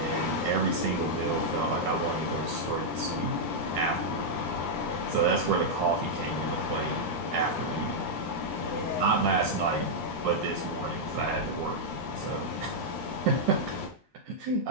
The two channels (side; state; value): both; normal; correlation -0.04